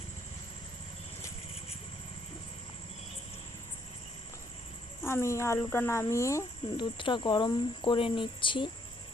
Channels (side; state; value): both; normal; correlation 0.69